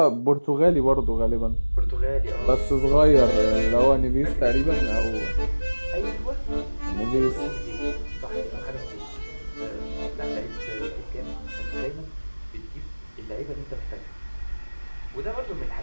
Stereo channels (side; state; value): both; inverted; correlation -1.00